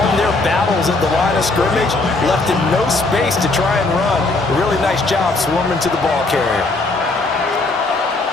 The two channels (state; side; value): quieter; right; 3.2 dB